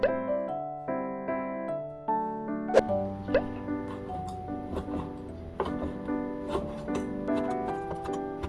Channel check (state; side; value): identical; both; correlation 1.00